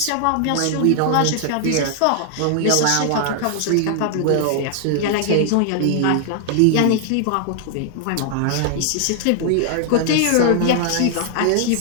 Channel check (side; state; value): both; different; correlation 0.00